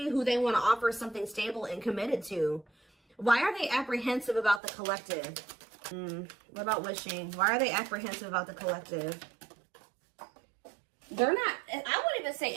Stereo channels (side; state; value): left; drops out; at 4.6 s